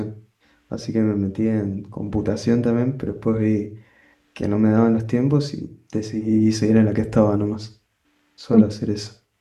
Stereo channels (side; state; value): both; identical; correlation 1.00